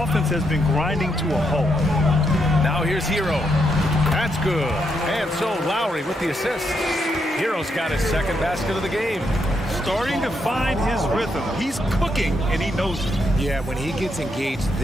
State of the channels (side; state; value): both; normal; correlation 0.79